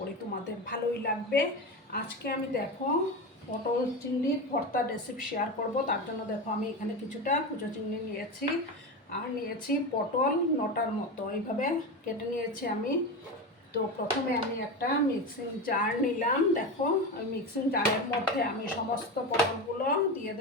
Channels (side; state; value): both; normal; correlation 0.21